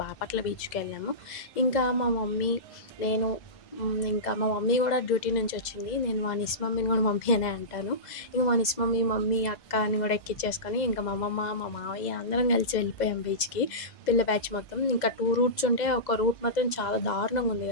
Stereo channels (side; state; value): right; late; 2.0 ms